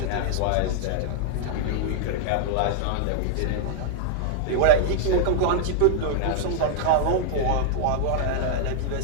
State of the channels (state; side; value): different; both; correlation -0.01